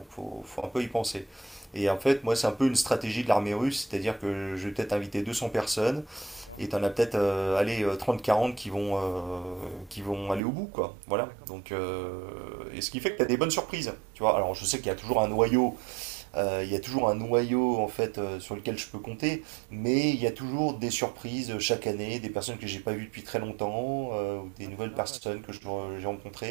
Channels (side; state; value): left; drops out; at 10.4 s